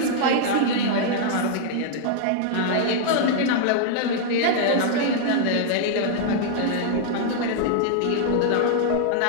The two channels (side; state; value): both; different; correlation -0.01